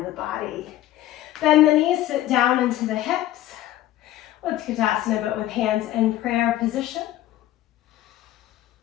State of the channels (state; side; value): quieter; right; 14.1 dB